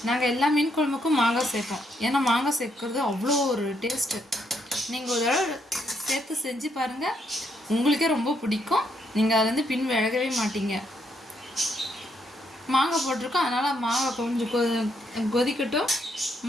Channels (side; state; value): both; normal; correlation 0.75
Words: நாங்கள் எல்லா மீன் குழம்புக்கும் மாங்காய் சேர்ப்போம். ஏன்னா மாங்காய் சேர்க்கறது அவ்வளோ ஒரு டேஸ்ட்டு. நீங்கள் ஒரு தடவை சேர்த்து செஞ்சு பாருங்கள், உங்களுக்கே ரொம்ப பிடிக்கும். நீங்கள் அதுலேருந்து பின் விலகவே மாட்டீங்க. மாங்காய் போட்டிருக்கோம், அதனால் மாங்காய் கொஞ்சம் கொதிக்கட்டும்.